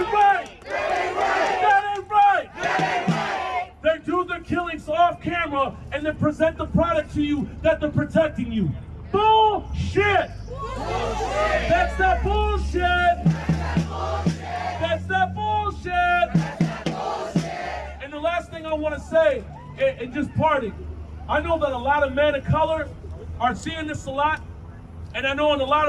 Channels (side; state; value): both; identical; correlation 1.00